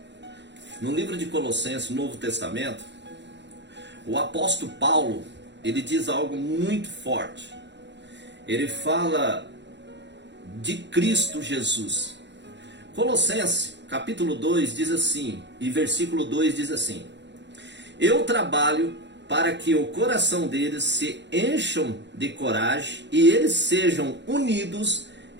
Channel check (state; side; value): late; left; 0.52 ms